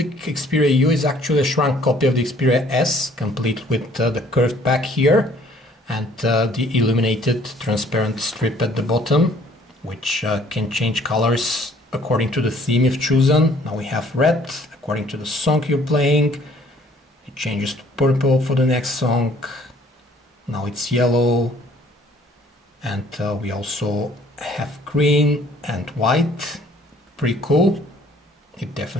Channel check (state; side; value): normal; both; correlation 0.58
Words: Xperia U is actually a shrunk copy of the Xperia S, complete with the curved back here and the illuminated transparent strip at the bottom, which can change colors according to the theme you've chosen. Now we have red, according to the song you're playing. It changes to purple for the next song. Now it's yellow. And we also have green and white. Pretty cool. It